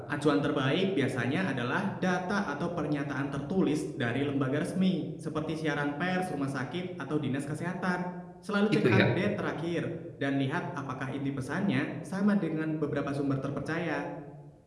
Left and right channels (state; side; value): identical; both; correlation 1.00